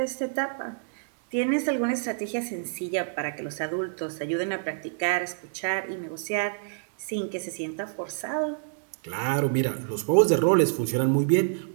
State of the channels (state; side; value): silent; left; digital silence